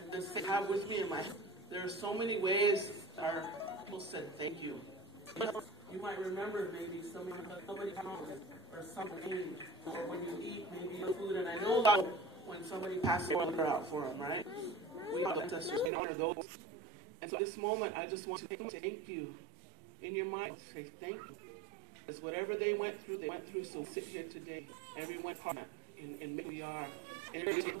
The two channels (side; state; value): left; drops out; at 15.9 s